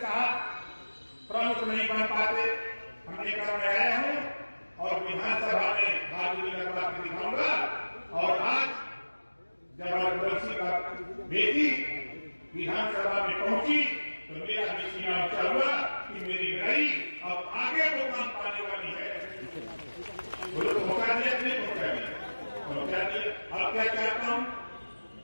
साहब प्रमुख नहीं बन पाते। हमने कहा मैं आया हूँ और विधानसभा में बहादुरी लगवा के दिखाऊंगा। और आज जब रघुवंशी का बेटी विधानसभा में पहुंची तो मेरा भी सीना ऊंचा हुआ कि मेरी लड़ाई अब आगे वो काम पाने वाली है। बोलो पहुंचा दिया कि नहीं पहुंचा दिया? पहुंचा दिया। अब क्या चाहता हूं,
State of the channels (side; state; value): both; inverted; correlation -1.00